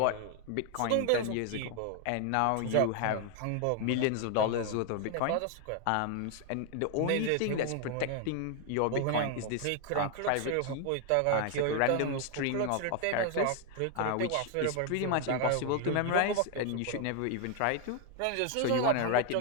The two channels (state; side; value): different; both; correlation 0.00